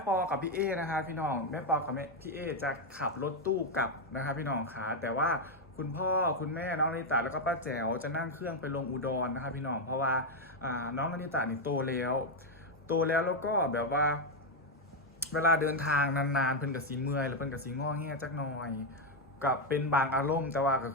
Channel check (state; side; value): normal; both; correlation 0.04